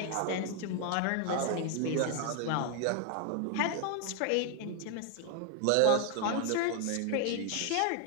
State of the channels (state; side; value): different; both; correlation 0.00